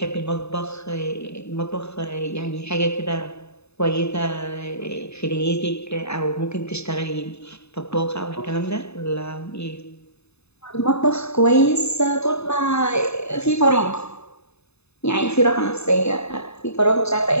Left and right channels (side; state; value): right; late; 0.80 ms